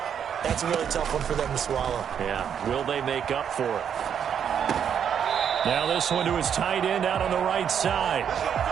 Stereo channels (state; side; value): quieter; left; 8.2 dB